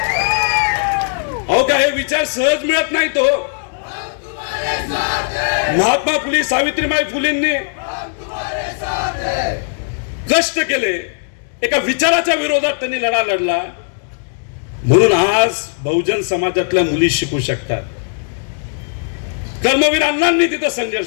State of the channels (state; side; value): silent; right; digital silence